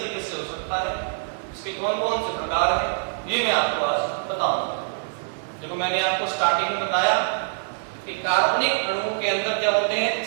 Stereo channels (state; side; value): silent; left; digital silence